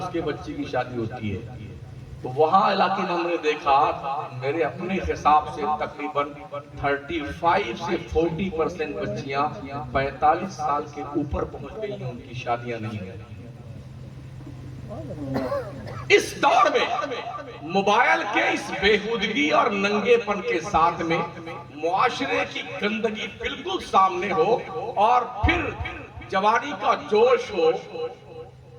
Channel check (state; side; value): identical; both; correlation 1.00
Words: کے بچی کی شادی ہوتی ہے۔ تو وہاں علاقے میں ہم نے دیکھا، میرے اپنے حساب سے تقریباً 35 سے 40% بچیاں 45 سال کے اوپر پہنچ گئی ہیں، ان کی شادیاں نہیں ہیں۔ اس دور میں موبائل کے اس بےہودگی اور ننگے پن کے ساتھ میں معاشرے کی گندگی بالکل سامنے ہو اور پھر جوانی کا جوش ہو،